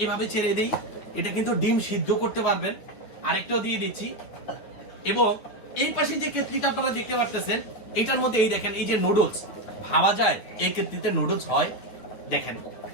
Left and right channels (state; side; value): late; right; 9.6 ms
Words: এভাবে ছেড়ে দিই, এটা কিন্তু ডিম সিদ্ধ করতে পারবেন। আরেকটাও দিয়ে দিচ্ছি। এবং এই পাশে যে কেটলিটা আপনারা দেখতে পাচ্ছেন, এটার মধ্যে এই দেখেন, এই যে নুডলস ভাবা যায়, এই কেটলিতে নুডলস হয়। দেখেন